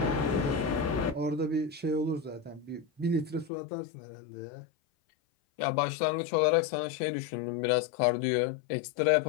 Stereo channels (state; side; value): drops out; right; at 3.5 s